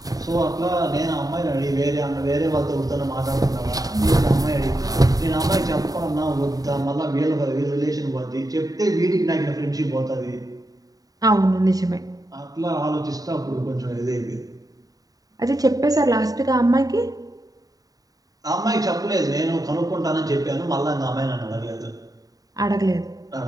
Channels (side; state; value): left; late; 0.18 ms